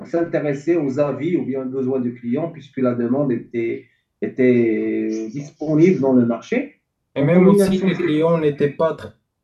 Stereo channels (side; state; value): both; identical; correlation 1.00